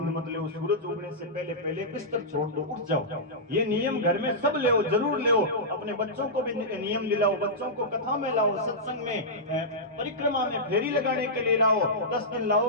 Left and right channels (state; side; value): normal; both; correlation -0.13